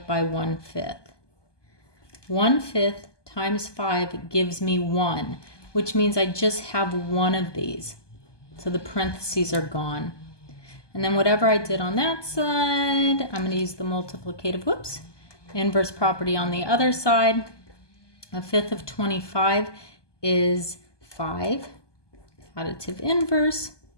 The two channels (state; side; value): late; right; 1.2 ms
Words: by 1/5, 1/5 times 5 gives me 1, which means I just have one of these. So the parentheses are gone. And then whatever I did on that side, I'm going to use the multiplicative, inverse property on the other side. 1/5 of 25 is 5. Additive inverse.